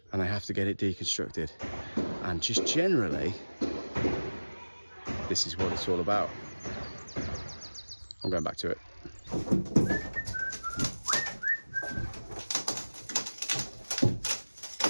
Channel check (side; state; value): both; inverted; correlation -1.00